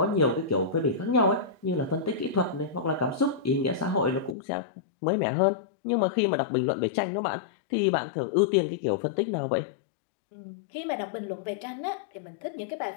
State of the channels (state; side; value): drops out; right; at 4.4 s